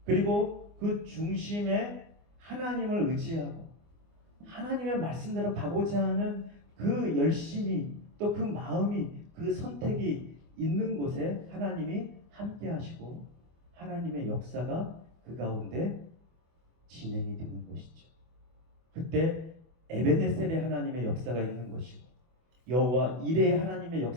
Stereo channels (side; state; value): left; late; 24 ms